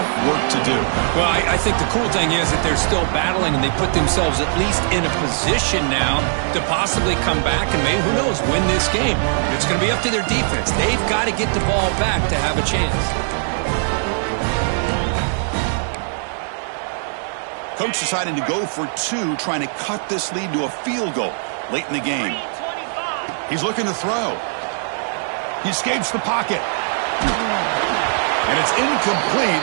work to do. Well, I think the cool thing is that they're still battling, and they put themselves at least in a position now to possibly come back and maybe, who knows, win this game. It's going to be up to their defense. They've got to get the ball back to have a chance. Coach deciding to go for 2, trying to cut this lead to a field goal late in the game. He's looking to throw. He escapes the pocket. And it's incomplete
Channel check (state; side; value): silent; left; digital silence